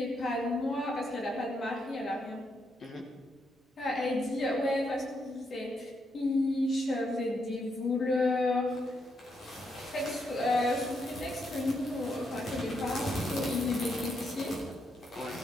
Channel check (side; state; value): both; normal; correlation 0.79